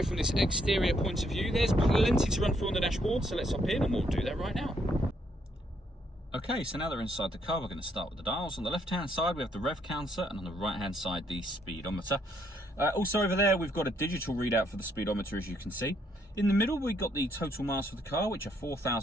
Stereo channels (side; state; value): both; normal; correlation 0.71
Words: from this exterior point of view. There's plenty to run through on the dashboard, so let's hop in and we'll do that right now. Okay, so now that we're inside the car, we're going to start with the dials. On the left-hand side, we have the rev counter, and on the right-hand side, the speedometer. Also over there, we've got a digital readout for the speedometer, as you can see. In the middle, we've got the total miles for the car, which are